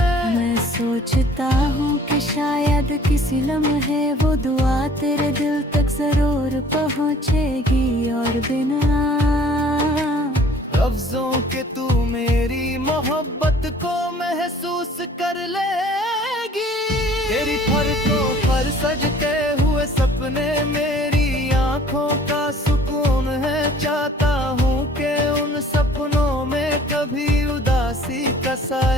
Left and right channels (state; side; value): normal; both; correlation 0.53